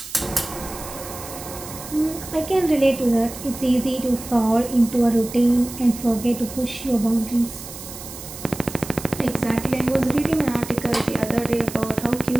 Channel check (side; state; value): right; noise; hiss, 13 dB below the sound